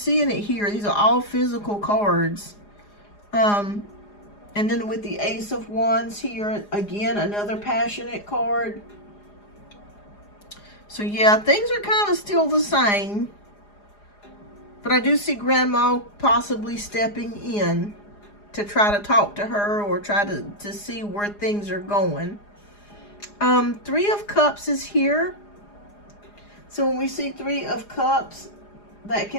it here. These are all physical cards. And then with the Ace of Wands here, again, another passionate card. So yeah, things are kind of still the same. But I do see Grandma possibly stepping in to try to talk to her or try to see where things are going. Three of Cups is here. So when we see Three of Cups, that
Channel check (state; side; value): late; right; 4.9 ms